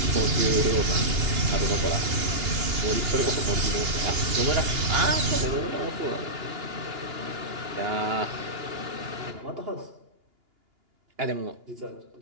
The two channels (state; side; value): late; left; 2.8 ms